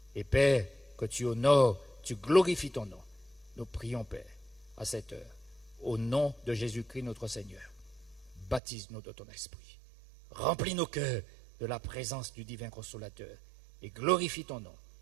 Et Père, que tu honores, tu glorifies ton nom. Nous prions, Père, à cette heure, au nom de Jésus-Christ notre Seigneur. baptise-nous de ton esprit. Remplis nos cœurs de la présence du divin consolateur et glorifie ton nom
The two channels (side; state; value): left; drops out; at 8.6 s